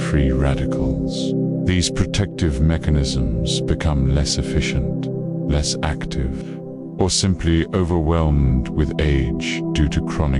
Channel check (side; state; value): both; identical; correlation 1.00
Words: radicals. These protective mechanisms become less efficient, less active, or simply overwhelmed with age due to